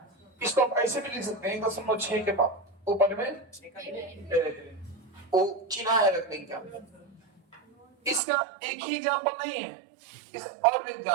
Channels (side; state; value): left; drops out; at 8.2 s